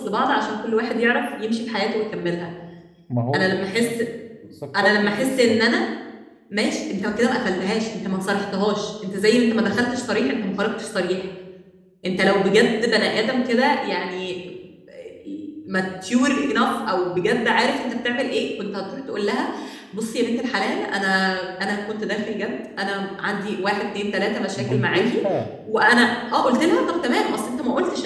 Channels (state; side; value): identical; both; correlation 1.00